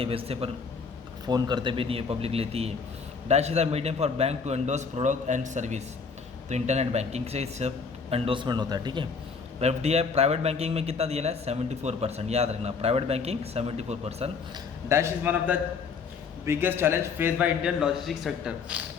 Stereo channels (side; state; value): right; quieter; 5.3 dB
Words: बेचते, पर फ़ोन करते भी नहीं है, पब्लिक लेती है। Dash is a medium for bank to endorse product and service. तो इंटरनेट बैंकिंग से सब एंडोर्समेंट होता है। ठीक है। एफडीआई प्राइवेट बैंकिंग में कितना दिया है? 74%। याद रखना, private banking 74%। Dash is one of the biggest challenge face by Indian logistic sector.